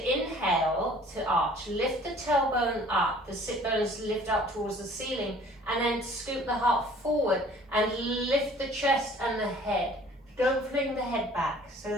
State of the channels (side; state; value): both; normal; correlation 0.52